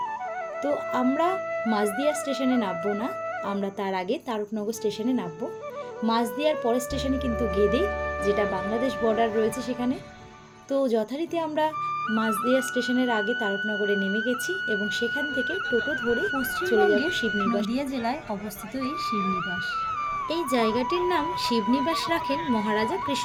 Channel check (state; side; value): identical; both; correlation 1.00